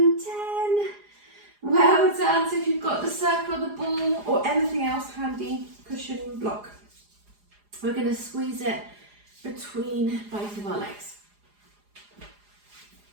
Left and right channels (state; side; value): late; left; 4.9 ms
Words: 10. Well done. So if you've got the circle, the ball, or anything else handy, cushion, block, we're going to squeeze it between both of our legs.